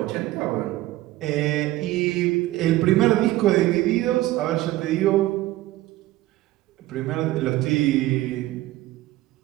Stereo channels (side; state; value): left; quieter; 16.6 dB